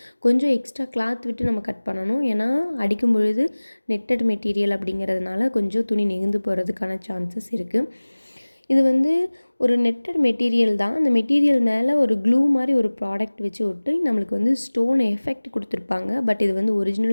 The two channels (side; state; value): both; inverted; correlation -1.00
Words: கொஞ்சம் எக்ஸ்ட்ரா கிளாத் விட்டு நம்ம கட் பண்ணணும். ஏன்னா அடிக்கும் பொழுது நெட்டட் மெட்டீரியல் அப்படிங்கிறதுனால கொஞ்சம் துணி நெகிழ்ந்து போகிறதுக்கான சான்சஸ் இருக்குது. இது வந்து ஒரு நெட்டட் மெட்டீரியல் தான். அந்த மெட்டீரியல் மேலே ஒரு க்ளூ மாதிரி ஒரு ப்ராடக்ட் வச்சு ஒட்டி நம்மளுக்கு வந்து ஸ்டோன் எஃபெக்ட் கொடுத்துருப்பாங்க. பட் இது வந்து